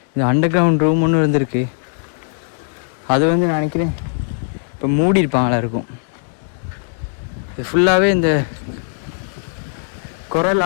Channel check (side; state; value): right; silent; digital silence